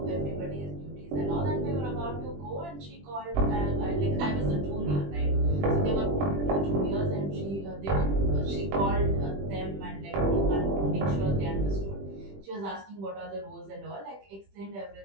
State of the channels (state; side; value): late; left; 20 ms